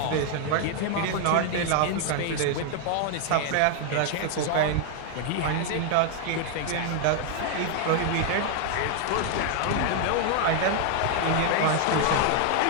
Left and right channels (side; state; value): both; different; correlation 0.00